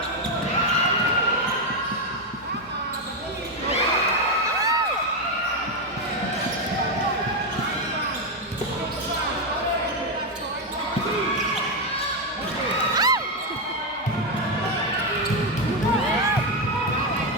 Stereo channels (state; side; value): normal; both; correlation 0.06